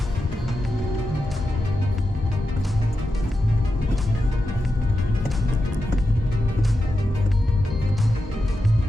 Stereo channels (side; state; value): both; normal; correlation 0.89